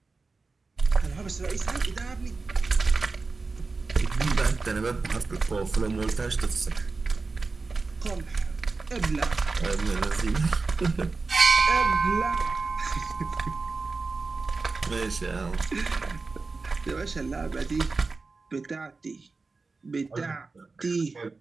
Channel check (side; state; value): left; quieter; 4.0 dB